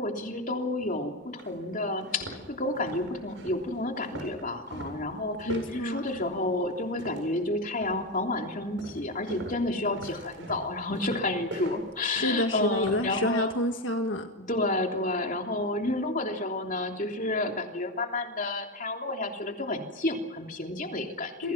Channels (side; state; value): both; normal; correlation 0.14